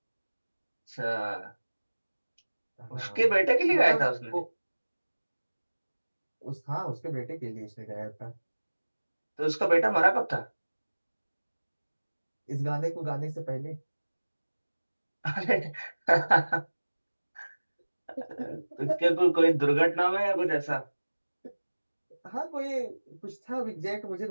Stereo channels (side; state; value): both; inverted; correlation -1.00